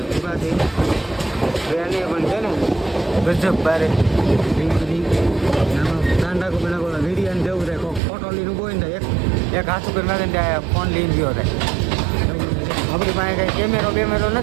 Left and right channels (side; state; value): left; drops out; at 8.0 s